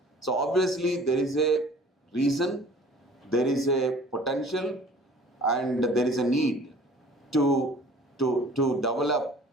So obviously there is a reason, there is a potential, and there is a need to develop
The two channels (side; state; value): both; normal; correlation 0.49